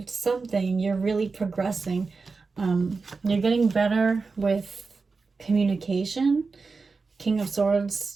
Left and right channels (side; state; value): left; quieter; 4.3 dB